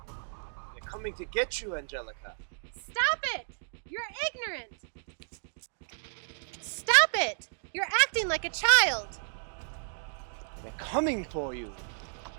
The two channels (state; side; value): silent; left; digital silence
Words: They're coming to get you, Angelica. Stop it! You're ignorant! Stop it! You're acting like a child! They're coming for you.